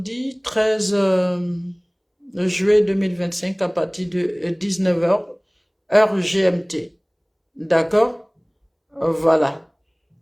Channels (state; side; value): identical; both; correlation 1.00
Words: 13 juillet 2025 à partir de 19h, heure GMT. D'accord? Voilà.